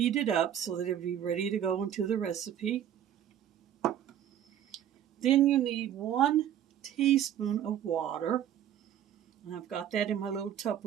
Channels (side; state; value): left; quieter; 10.4 dB